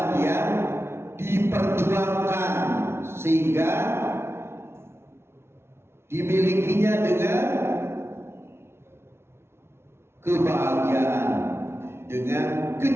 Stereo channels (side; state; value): left; late; 0.12 ms